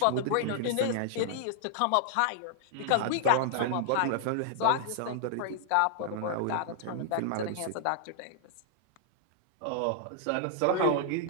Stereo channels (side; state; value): both; different; correlation -0.01